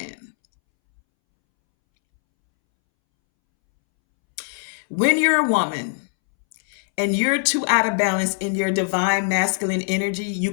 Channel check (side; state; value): right; silent; 64 dB below the other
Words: When you're a woman and you're too out of balance in your divine masculine energy, you